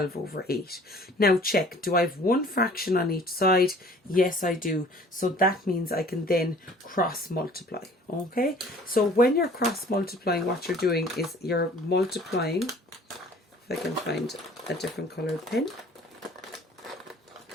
over 8. Now check, do I have one fraction on each side? Yes, I do. So that means I can then cross multiply. Okay, so when you're cross multiplying, what you're doing is you're multiplying, if I can find a different colored pen.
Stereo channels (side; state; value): both; normal; correlation 0.51